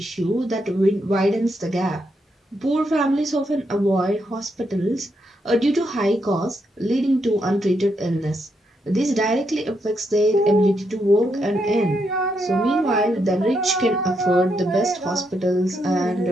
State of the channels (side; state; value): both; normal; correlation 0.80